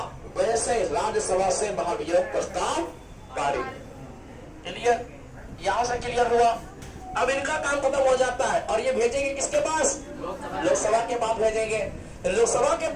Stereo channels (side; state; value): both; identical; correlation 1.00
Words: वैसे राज्यसभा से महाभियोग प्रस्ताव पारित। क्लियर? यहां से क्लियर हुआ। अब इनका काम खत्म हो जाता है और ये भेजेंगे किसके पास? लोकसभा के पास भेजेंगे। लोकसभा के